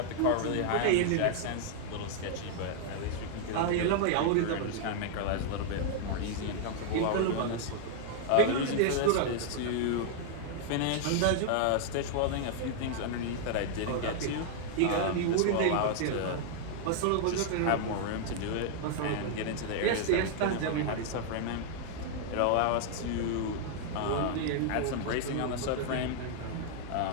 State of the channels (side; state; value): both; different; correlation 0.00